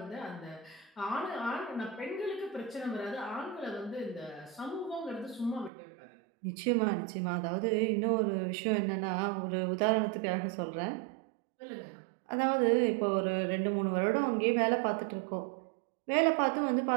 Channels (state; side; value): drops out; left; at 5.7 s